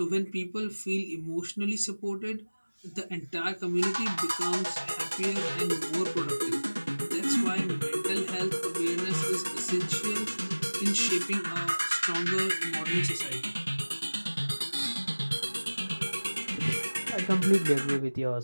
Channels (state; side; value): inverted; both; correlation -1.00